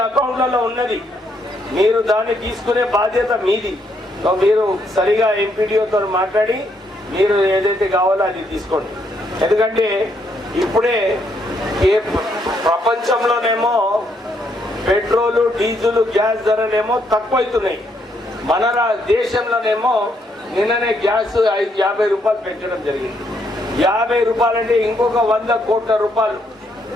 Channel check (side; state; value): both; normal; correlation 0.74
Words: అకౌంట్లలో ఉన్నది, మీరు దాన్ని తీసుకునే బాధ్యత మీది. మీరు సరిగా ఎంపీడీఓతో మాట్లాడి మీరు ఏదైతే కావాలో అది తీసుకోండి. ఎందుకంటే ఇప్పుడే ప్రపంచంలోనేమో పెట్రోలు, డీజిల్, గ్యాస్ ధరలేమో తక్కువైతున్నాయి. మన దేశంలోనేమో నిన్ననే గ్యాస్ 50 రూపాయలు పెంచడం జరిగింది. 50 రూపాయలు అంటే ఇంకొక 100 కోట్ల రూపాయలు,